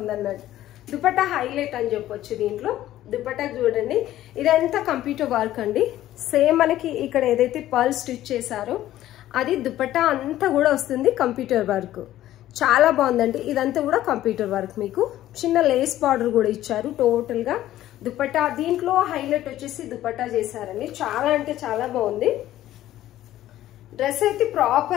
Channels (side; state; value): right; quieter; 13.7 dB